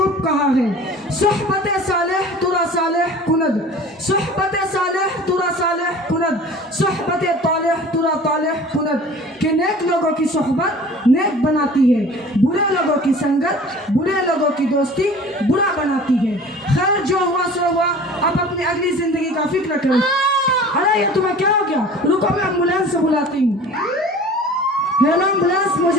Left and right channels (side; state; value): both; normal; correlation 0.43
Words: कहा है, सोहबत सालेह तुरा सालेह कुनद, सोहबत सालेह तुरा सालेह कुनद, सोहबत तालेह तुरा तालेह कुनद, कि नेक लोगों की सोहबत नेक बनाती है, बुरे लोगों की संगत बुरे लोगों की दोस्ती बुरा बनाती है। खैर जो हुआ सो हुआ, अब अपनी अगली जिंदगी का फिक्र करो। अरे ये तुम्हें क्या हो गया? रुको, मैं एम्बुलेंस से बुलाती हूँ। हेलो एम्बुलेंस,